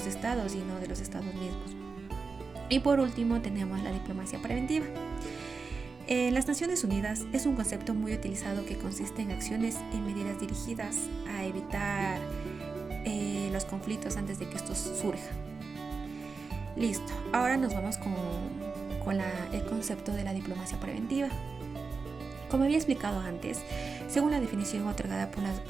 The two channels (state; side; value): quieter; left; 4.6 dB